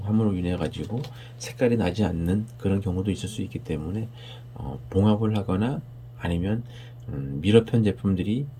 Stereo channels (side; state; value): both; identical; correlation 1.00